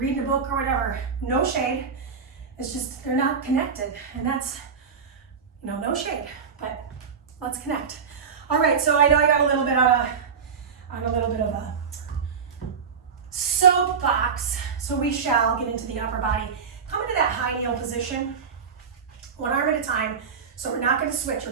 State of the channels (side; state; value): left; quieter; 6.2 dB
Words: a book or whatever. No shade. It's just, they're not connected. And that's, you know, no shade, but let's connect. All right, so I know I got a little bit on a little bit of a soapbox, so we shall get into the upper body. Come into that high kneel position, 1 arm at a time. So we're not going to switch,